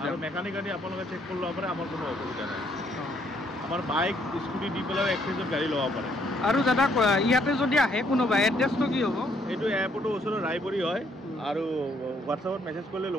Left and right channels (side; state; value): both; normal; correlation 0.68